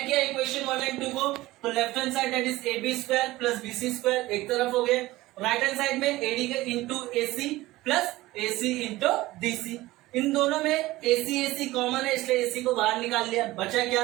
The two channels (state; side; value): quieter; left; 18.2 dB